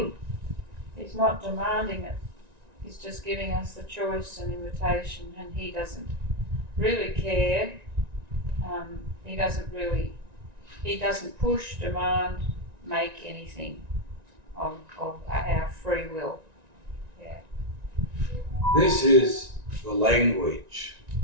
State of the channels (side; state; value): left; late; 1.9 ms